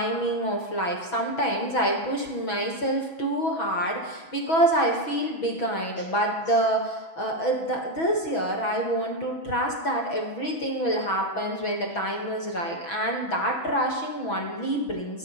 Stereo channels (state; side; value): late; right; 6.1 ms